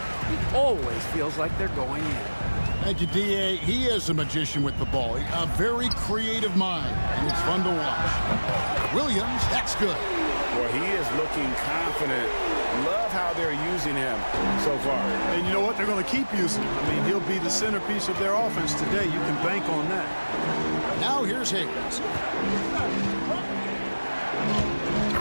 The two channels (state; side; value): inverted; both; correlation -1.00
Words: always feels like they're going in. Thank you, D.A. He is a magician with the ball. A very creative mind, and it's fun to watch. Williams, that's good. Well, he is looking confident. Love how they're using him so far. And you know what? They're going to keep using him. I mean, he'll be the centerpiece of their offense today. You can bank on that. Now here's Hayes.